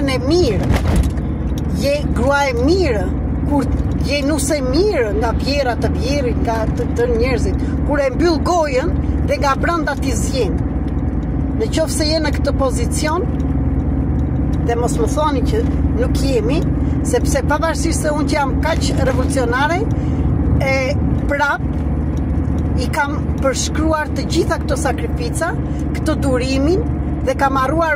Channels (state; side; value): identical; both; correlation 1.00